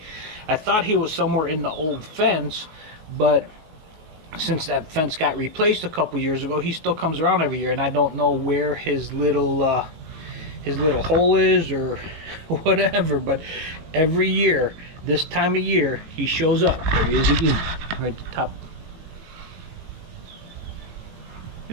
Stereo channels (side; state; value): left; late; 19 ms